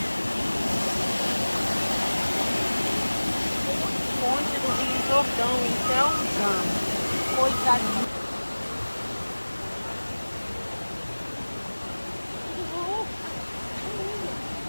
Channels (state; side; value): inverted; both; correlation -1.00